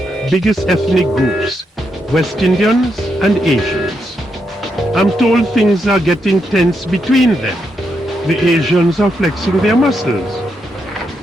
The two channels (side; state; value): both; normal; correlation 0.81